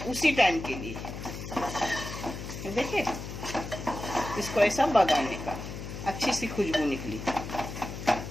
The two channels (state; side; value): noise; left; hum, 8 dB below the sound